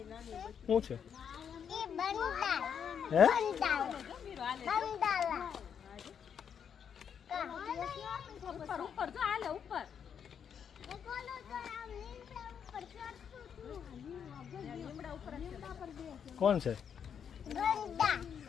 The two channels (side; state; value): right; quieter; 7.7 dB